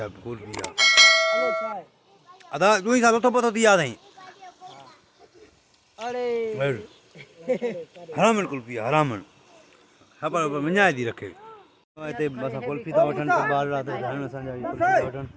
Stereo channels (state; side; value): identical; both; correlation 1.00